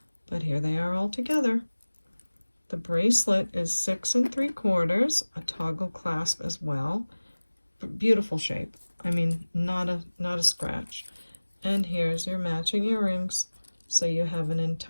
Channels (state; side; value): inverted; both; correlation -1.00